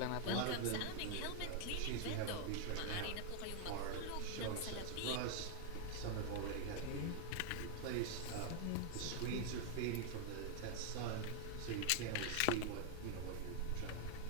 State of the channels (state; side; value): different; both; correlation 0.00